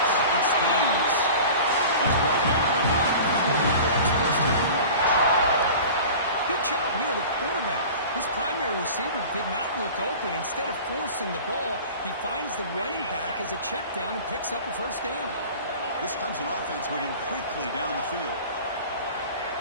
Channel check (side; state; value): both; inverted; correlation -0.39